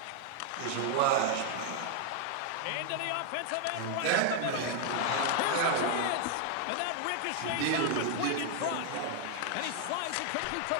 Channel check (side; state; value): both; different; correlation 0.00